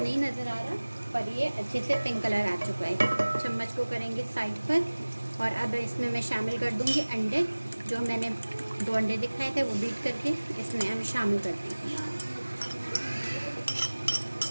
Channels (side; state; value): both; inverted; correlation -1.00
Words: नज़र आ रहा पर ये अच्छे से पिंक कलर आ चुका है। चम्मच को करेंगे साइड पर और अब इसमें मैं शामिल कर दूंगी अंडे। जो मैंने 2 अंडे दिखाए थे वो बीट करके इसमें हम शामिल कर देंगे।